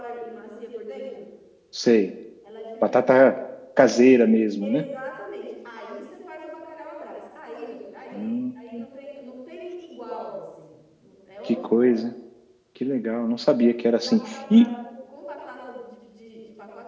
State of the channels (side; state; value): both; identical; correlation 1.00